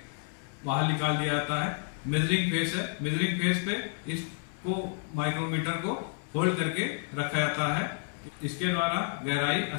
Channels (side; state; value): right; silent; 58 dB below the other